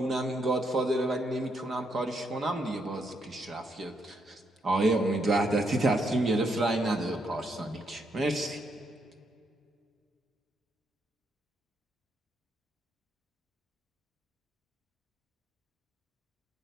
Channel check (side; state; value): both; normal; correlation 0.76